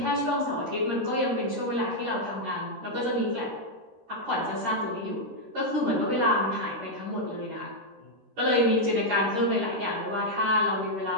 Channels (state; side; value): late; left; 13 ms